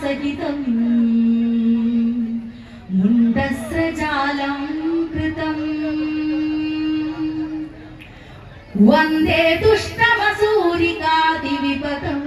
മുണ്ഡസ്രജാലം കൃതം വന്ദേ ദുഷ്ടമസൂരികാതിവിപദം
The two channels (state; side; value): identical; both; correlation 1.00